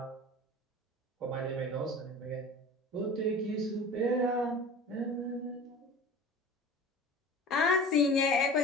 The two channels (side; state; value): both; normal; correlation 0.37